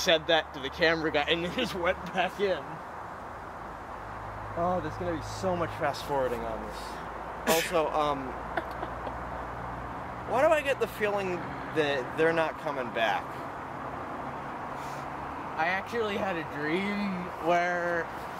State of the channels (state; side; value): identical; both; correlation 1.00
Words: that to the camera guy, and then just went back in. Oh, there's gonna be so much fast forwarding on this. Also, why do I get the feeling that they're not coming back? I actually had a dream where